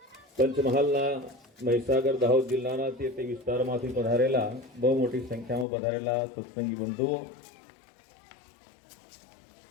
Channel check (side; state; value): right; drops out; at 5.7 s